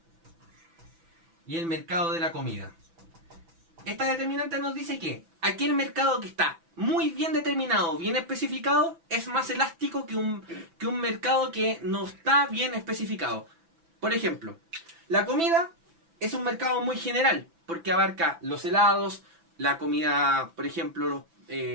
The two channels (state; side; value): late; left; 6.0 ms